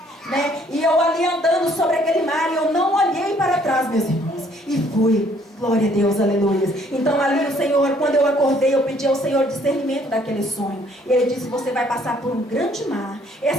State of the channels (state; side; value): normal; both; correlation 0.63